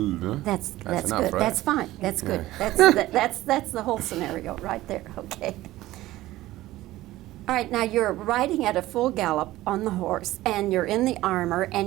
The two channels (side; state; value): left; quieter; 16.4 dB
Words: That's enough, good. right? That's fine. That's good. That's the whole scenario right there. Okay. All right. Now you're riding at a full gallop on the horse, and you're in the armor,